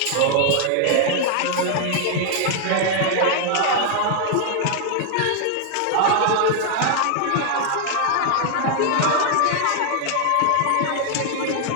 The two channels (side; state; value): both; different; correlation 0.00